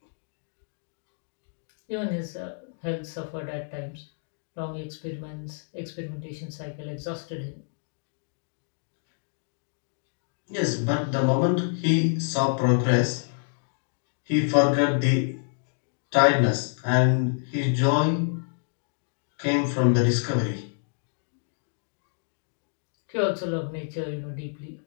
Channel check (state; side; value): silent; right; digital silence